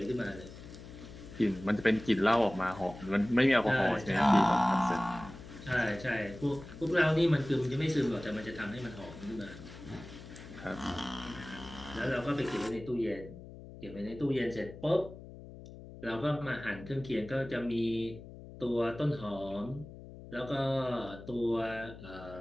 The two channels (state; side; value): noise; left; hum, 15 dB below the sound